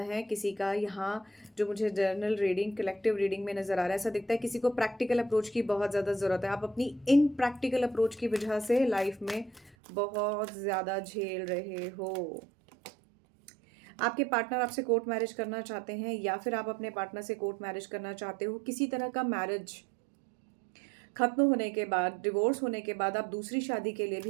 किसी का यहाँ जो मुझे जर्नल रीडिंग, कलेक्टिव रीडिंग में नज़र आ रहा है, ऐसा दिखता है किसी को प्रैक्टिकल अप्रोच की बहुत ज़्यादा ज़रूरत है। आप अपनी इन प्रैक्टिकल अप्रोच की वजह से लाइफ में बहुत ज़्यादा झेल रहे हो। आपके पार्टनर आपसे कोर्ट मैरिज करना चाहते हैं, या फिर आप अपने पार्टनर से कोर्ट मैरिज करना चाहते हो। किसी तरह का मैरिज खत्म होने के बाद, डिवोर्स होने के बाद आप दूसरी शादी के लिए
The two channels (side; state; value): left; drops out; at 9.8 s